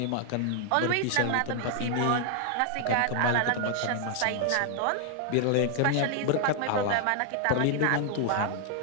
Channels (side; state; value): both; different; correlation 0.00